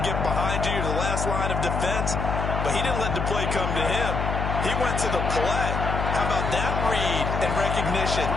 get behind you. You're the last line of defense. But he didn't let the play come to him. He went to the play. How about that read and recognition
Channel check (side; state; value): left; noise; hum, 2 dB below the sound